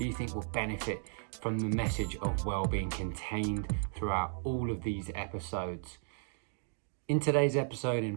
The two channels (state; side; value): silent; left; digital silence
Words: you think will benefit from the message of well-being contained throughout all of these episodes. In today's episode,